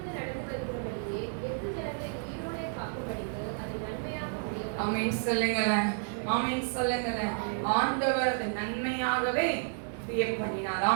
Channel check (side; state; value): left; silent; 56 dB below the other